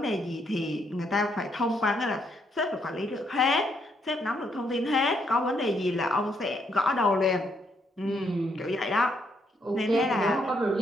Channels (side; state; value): both; normal; correlation 0.74